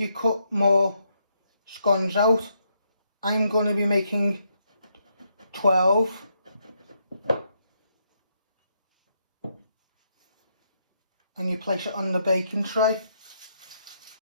more scones out. I'm going to be making 12. And you place it on the baking tray.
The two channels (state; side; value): inverted; both; correlation -0.77